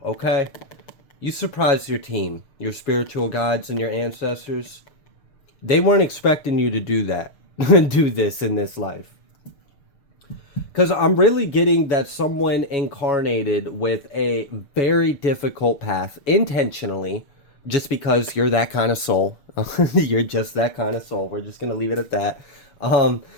okay? You surprised your team, your spiritual guides and your ancestors. They weren't expecting you to do that, do this in this life. Because I'm really getting that someone incarnated with a very difficult path intentionally, just because you're that kind of soul. You're just that kind of soul. We're just going to leave it at that.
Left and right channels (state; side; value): late; right; 6.7 ms